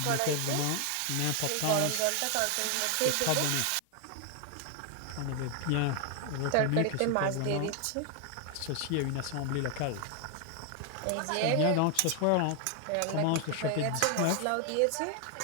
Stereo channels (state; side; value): different; both; correlation 0.01